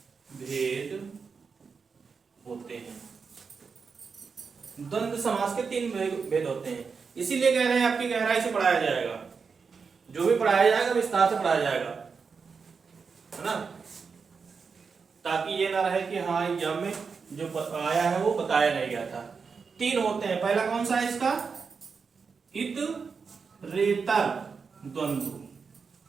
भेद होते हैं। द्वंद्व समास के 3 भेद होते हैं, इसीलिए कह रहे हैं आपकी गहराई से पढ़ाया जाएगा। जो भी पढ़ाया जाएगा विस्तार से पढ़ाया जाएगा, है ना, ताकि ये ना रहे कि हाँ एग्जाम में जो आया है वो बताया नहीं गया था। 3 होते हैं। पहला कौन सा है इसका? इतरेतर द्वंद्व,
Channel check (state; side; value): quieter; left; 5.4 dB